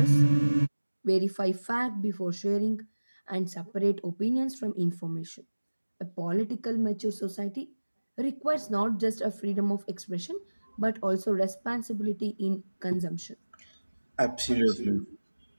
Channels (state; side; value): inverted; both; correlation -1.00